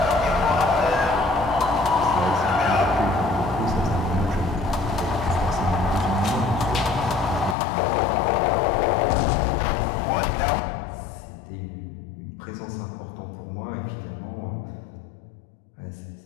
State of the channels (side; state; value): right; drops out; at 7.6 s